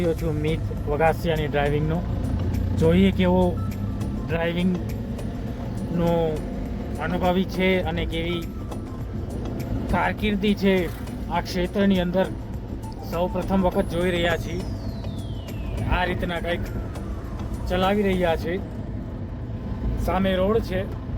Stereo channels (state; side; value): identical; both; correlation 1.00